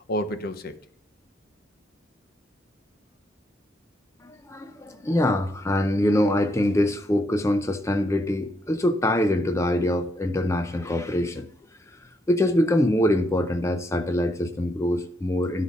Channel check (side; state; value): both; normal; correlation 0.76